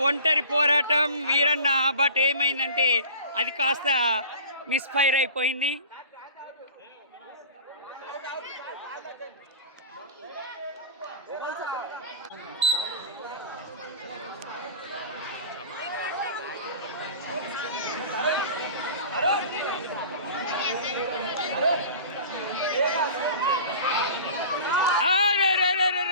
ఒంటరి పోరాటం వీరన్న, బట్ ఏమైందంటే అది కాస్త మిస్ఫైర్ అయిపోయింది.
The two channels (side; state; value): both; inverted; correlation -0.39